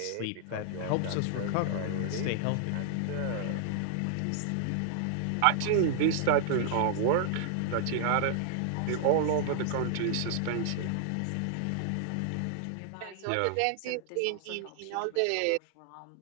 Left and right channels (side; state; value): both; different; correlation 0.00